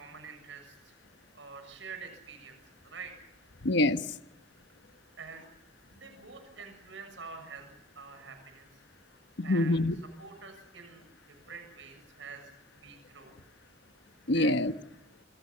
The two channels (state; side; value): normal; both; correlation 0.40